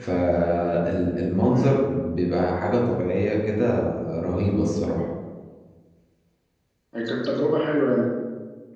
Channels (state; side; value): identical; both; correlation 1.00